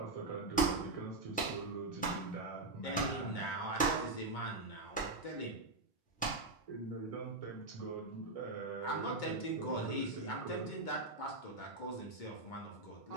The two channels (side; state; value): left; quieter; 3.0 dB